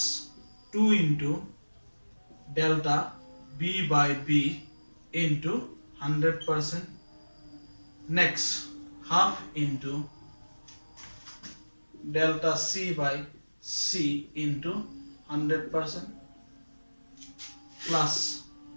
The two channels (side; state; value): both; inverted; correlation -1.00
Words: 2 into delta b by b into 100% next half into delta c by c into 100% plus